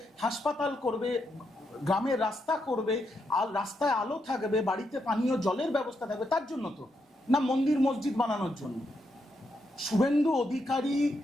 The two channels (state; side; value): normal; both; correlation 0.81